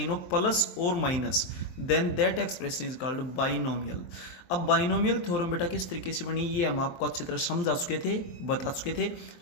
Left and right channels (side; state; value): right; late; 23 ms